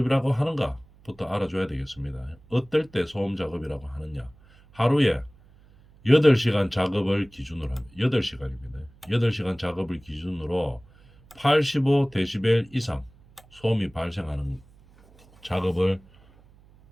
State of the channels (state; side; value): noise; right; hum, 27 dB below the sound